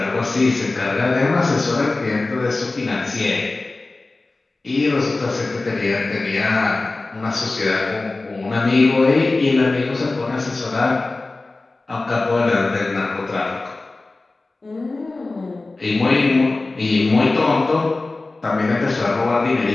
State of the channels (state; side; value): quieter; right; 3.3 dB